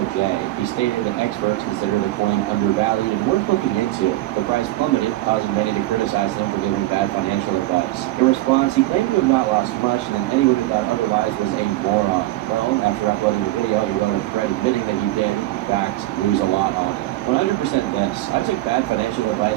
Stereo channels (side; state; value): left; quieter; 16.8 dB